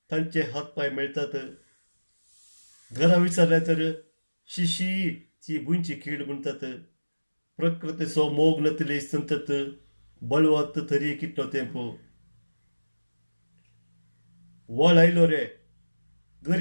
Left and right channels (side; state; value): both; inverted; correlation -1.00